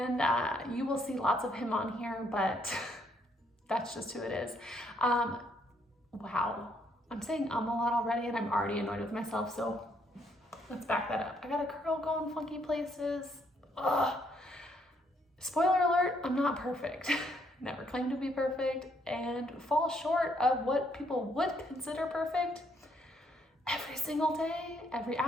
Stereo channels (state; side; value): normal; both; correlation 0.71